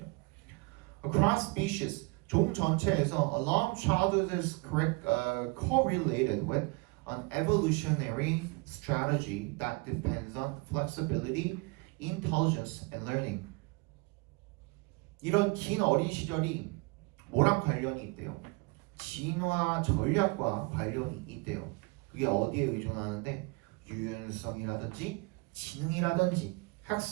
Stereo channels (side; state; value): left; quieter; 26.6 dB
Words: Across species, 종 전체에서 along childhood is correlated with an evolutionary strategy that depends on flexibility, intelligence, and learning. 이런 긴 어린 시절이 뭐랑 관련이 있대요? 진화 전략과 관련이 있대요. 그게 어디에 의존하는데 유연성이라든지 지능이라든지